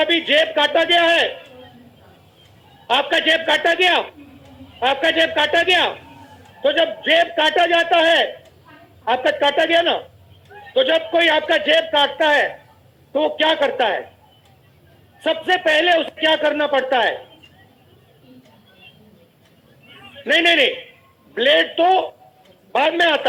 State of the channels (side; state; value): both; identical; correlation 1.00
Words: जेब काटा गया है? आपका जेब काटा गया? आपका जेब काटा गया? तो जब जेब काटा जाता है, आपका काटा गया ना, तो जब कोई आपका जेब काटता है तो वो क्या करता है? सबसे पहले उसे क्या करना पड़ता है? नहीं नहीं नहीं, ब्लेड तो बाद में आता